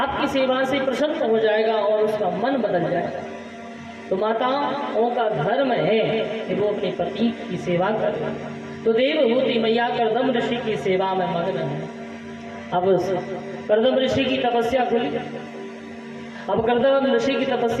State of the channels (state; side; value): identical; both; correlation 1.00